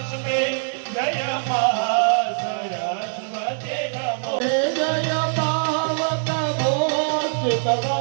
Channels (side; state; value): left; silent; digital silence